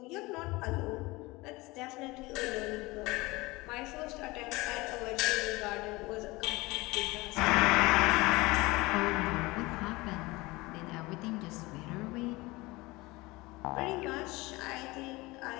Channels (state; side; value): quieter; right; 22.1 dB